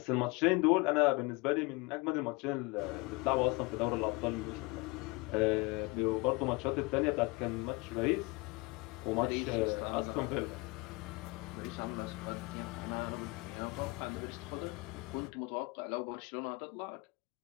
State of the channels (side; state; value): right; quieter; 25.6 dB